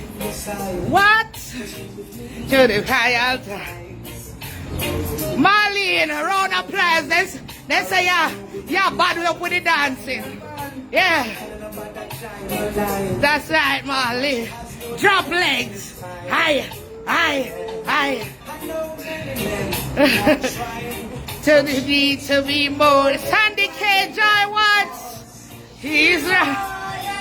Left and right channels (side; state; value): both; identical; correlation 1.00